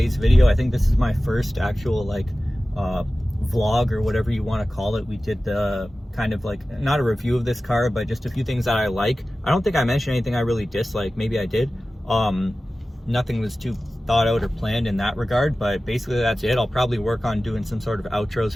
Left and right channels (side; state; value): both; normal; correlation 0.96